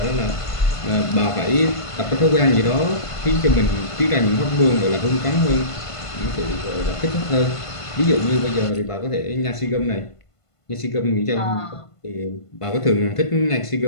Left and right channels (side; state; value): right; late; 1.5 ms